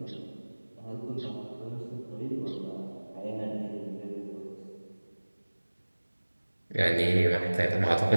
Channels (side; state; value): both; inverted; correlation -1.00